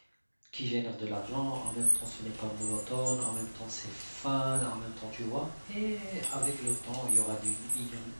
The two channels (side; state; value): both; inverted; correlation -1.00